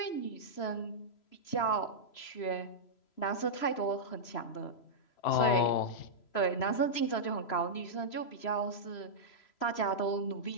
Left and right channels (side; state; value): right; late; 3.0 ms